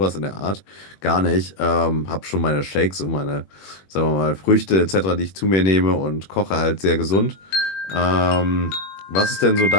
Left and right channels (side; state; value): right; late; 21 ms